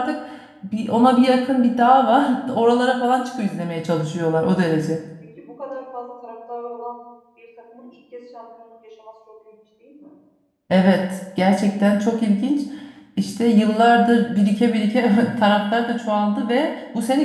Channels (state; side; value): identical; both; correlation 1.00